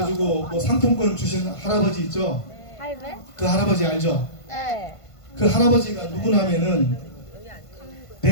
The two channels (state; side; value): late; right; 1.5 ms